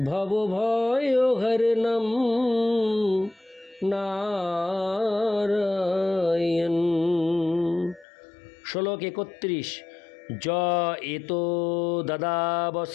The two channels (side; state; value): right; drops out; at 8.1 s